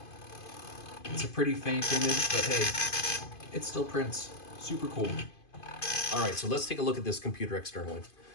It's a pretty faint image, but hey, it still prints. Super cool. All right, so let's take a look at this computer externally.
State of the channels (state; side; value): late; right; 2.5 ms